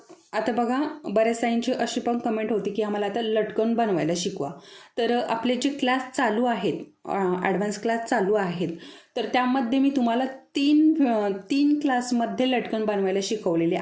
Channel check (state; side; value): identical; both; correlation 1.00